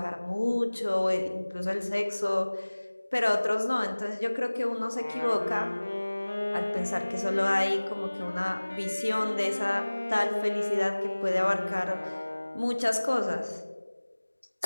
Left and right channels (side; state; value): both; inverted; correlation -1.00